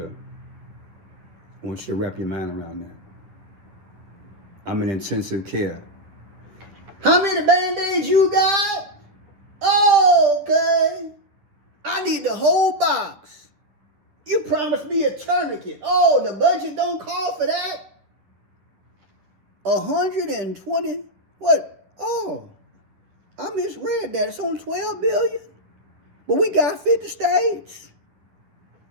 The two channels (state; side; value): late; left; 10 ms